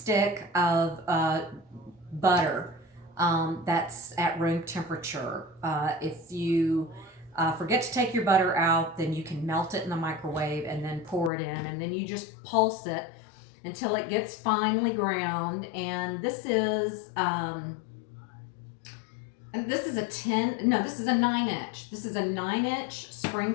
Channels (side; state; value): right; drops out; at 11.3 s